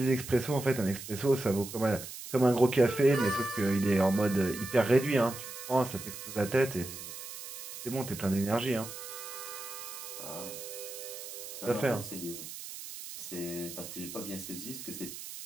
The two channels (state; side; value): noise; right; hiss, 10 dB below the sound